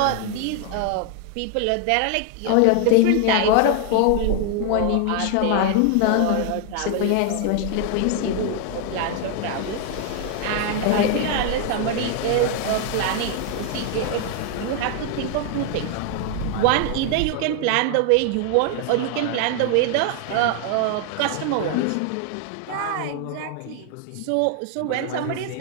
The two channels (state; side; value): different; both; correlation 0.00